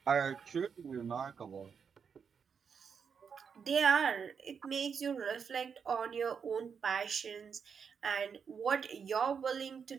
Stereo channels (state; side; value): quieter; left; 6.5 dB